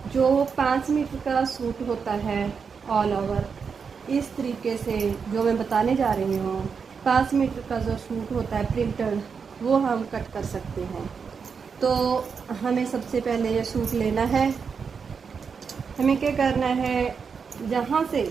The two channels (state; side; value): quieter; left; 5.9 dB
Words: जो 5 मीटर का सूट होता है ऑल ओवर, इस तरीके से जो मैं बताने जा रही हूँ, 5 मीटर का जो सूट होता है प्रिंटेड, वो हम कट कर सकते हैं। तो हमें सबसे पहले ये सूट लेना है। हमें क्या करना है, जहाँ से